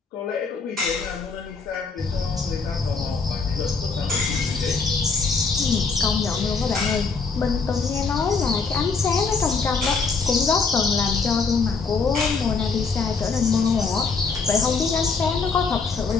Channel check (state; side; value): quieter; right; 4.7 dB